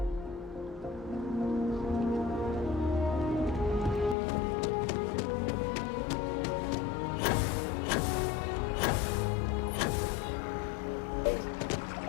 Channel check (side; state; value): right; drops out; at 4.2 s